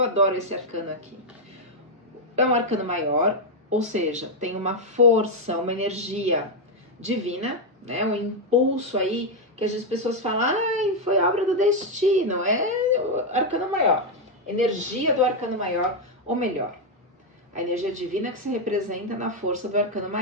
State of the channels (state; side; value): normal; both; correlation 0.02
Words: esse arcano aqui. É um arcano maior, ou seja, tem uma força, uma energia divina, né? Um impulso aí que as pessoas falam, ai, foi obra do destino. É o arcano maior, energia do arcano maior, ou melhor, a energia divina que se representa na força do arcano